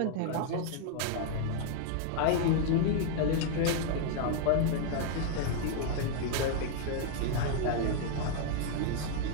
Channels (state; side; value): different; both; correlation 0.00